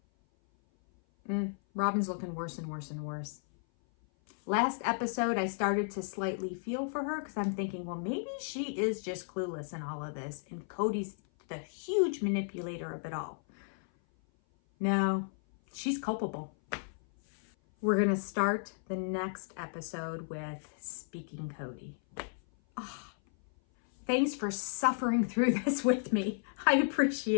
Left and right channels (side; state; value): right; silent; 55 dB below the other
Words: on. Robin's looking worse and worse and worse. Last episode, I started to slightly feel for her because I'm thinking, well, maybe she is just clueless in all of this and Cody's the huge manipulator of it all. No, she's culpable. We're going to start the next episode with Speaking Cody. Oh, thanks for suffering through this with me. I